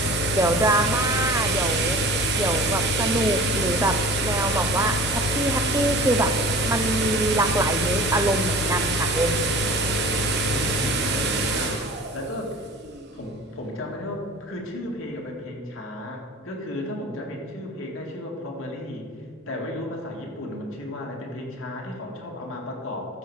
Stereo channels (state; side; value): normal; both; correlation 0.40